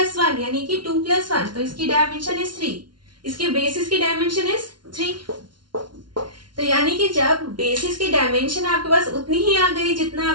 यानी कि 2 + 1, तो इसकी डायमेंशन इज 3, इसके बेसिस की डायमेंशन इज 3। तो यानी कि जब बेसिस की डायमेंशन आपके पास उतनी ही आ गई जितना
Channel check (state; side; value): late; left; 0.71 ms